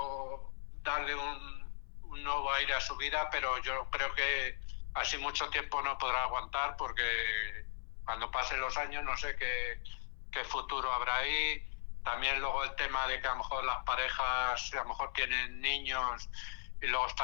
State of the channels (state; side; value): silent; right; 53 dB below the other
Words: darle un nuevo aire a su vida, pero yo creo que así mucho tiempo no podrá aguantar, porque cuando pasen los años no sé qué futuro habrá ahí. También luego el tema de que a lo mejor las parejas a lo mejor tienen niños, y luego